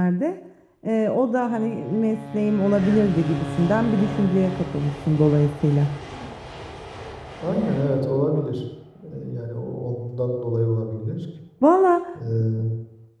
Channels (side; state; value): both; identical; correlation 1.00